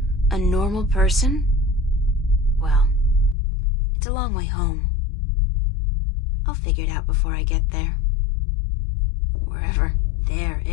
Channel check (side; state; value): right; drops out; at 3.4 s